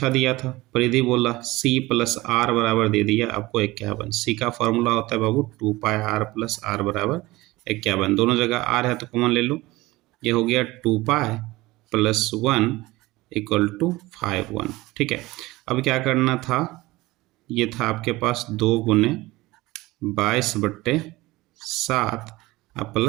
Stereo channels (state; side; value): quieter; left; 19.8 dB